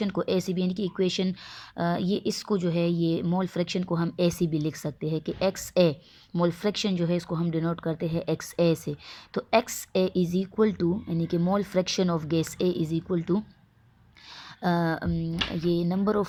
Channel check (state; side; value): identical; both; correlation 1.00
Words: को ऐसे भी, यानी कि इक्वेशन ये इसको जो है ये मोल फ्रैक्शन को हम ऐसे भी लिख सकते हैं कि एक्स ए, मोल फ्रैक्शन जो है इसको हम डिनोट करते हैं एक्स ए से। तो X A is equal to, यानी कि mole fraction of gas A is equal to ये नंबर